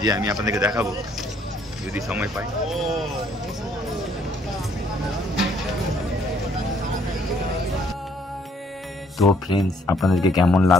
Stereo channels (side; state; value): both; normal; correlation 0.65